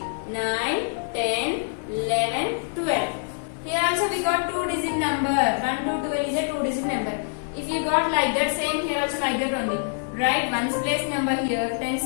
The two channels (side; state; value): right; silent; 58 dB below the other